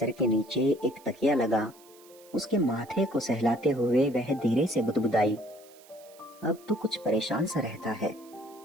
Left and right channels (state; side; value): noise; right; hiss, 25 dB below the sound